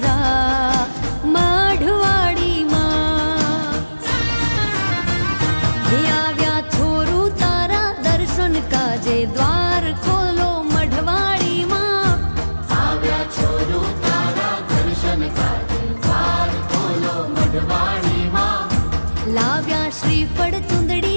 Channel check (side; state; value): both; inverted; correlation -1.00